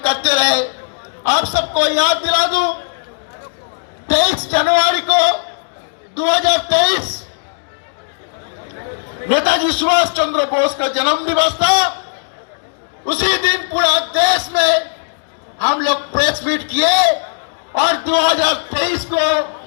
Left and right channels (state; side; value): silent; right; digital silence